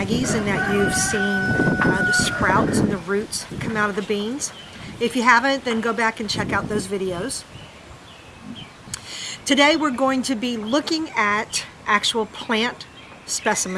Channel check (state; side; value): identical; both; correlation 1.00